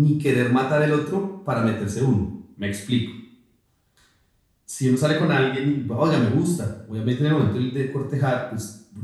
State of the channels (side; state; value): both; identical; correlation 1.00